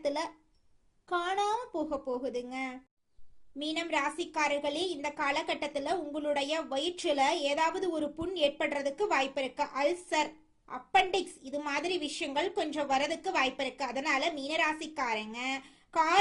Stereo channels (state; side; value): identical; both; correlation 1.00